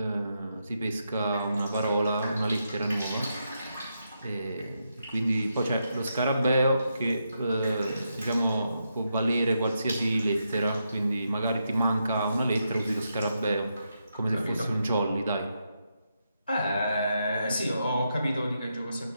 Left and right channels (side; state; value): both; inverted; correlation -0.83